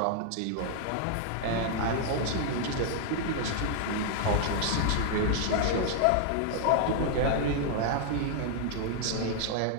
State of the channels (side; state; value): both; different; correlation -0.01